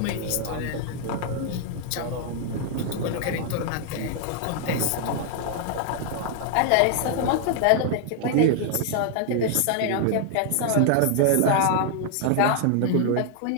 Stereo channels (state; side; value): different; both; correlation 0.00